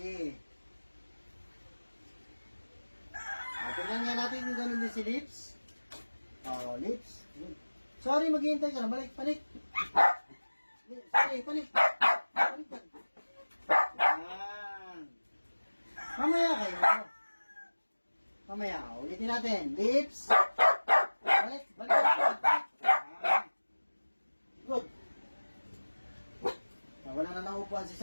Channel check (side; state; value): both; inverted; correlation -1.00